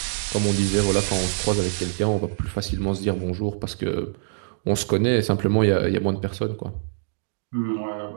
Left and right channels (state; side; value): silent; left; digital silence